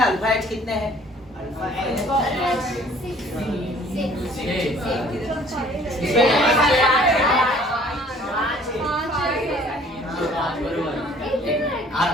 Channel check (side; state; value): both; normal; correlation 0.55